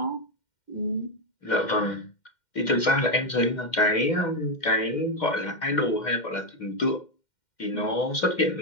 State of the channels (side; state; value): right; late; 2.1 ms